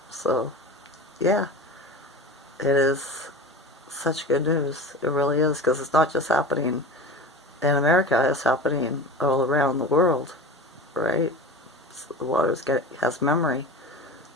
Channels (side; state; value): both; normal; correlation 0.32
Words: So yeah, it is such good news. It really is, because it's not just happening in America, it's happening all around the world, right? So the water has memory,